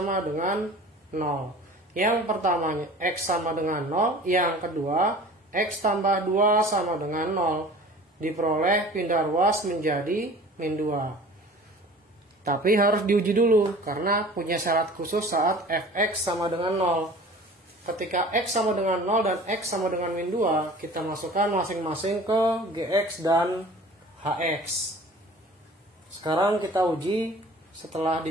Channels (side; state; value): both; normal; correlation 0.44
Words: dengan 0. Yang pertamanya x sama dengan 0, yang kedua x tambah 2 sama dengan 0. Diperoleh pindah ruas menjadi min 2. Tapi harus diuji dulu, karena punya syarat khusus saat fx sama dengan 0. Ketika X sama dengan 0 dan X sama dengan min 2, kita masukkan masing-masing ke Gx dan Hx. Sekarang kita uji setelah